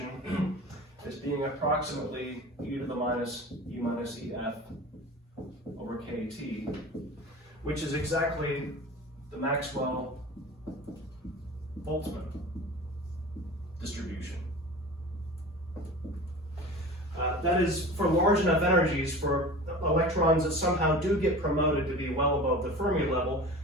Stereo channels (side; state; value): both; normal; correlation 0.36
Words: as being approximately e to the minus E minus EF over KT, which is exactly the Maxwell-Boltzmann distribution. That is for large enough energies for electrons that somehow do get promoted to be well above the Fermi level,